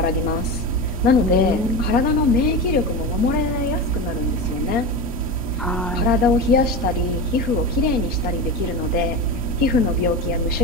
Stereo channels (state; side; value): normal; both; correlation 0.23